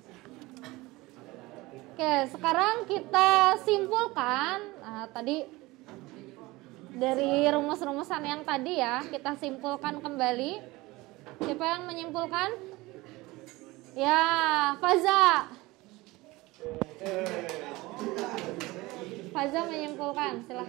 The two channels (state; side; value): quieter; left; 20.9 dB